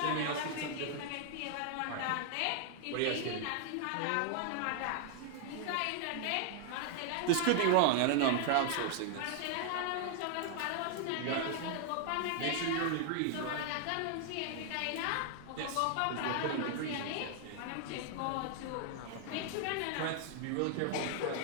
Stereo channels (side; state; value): both; different; correlation 0.00